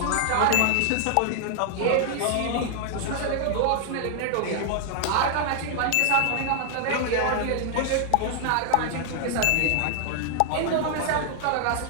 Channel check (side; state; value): both; different; correlation 0.00